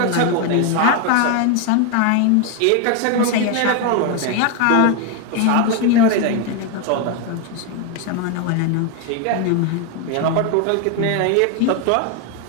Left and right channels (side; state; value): both; different; correlation 0.01